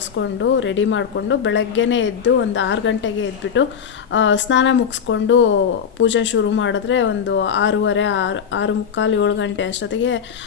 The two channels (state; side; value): quieter; right; 7.4 dB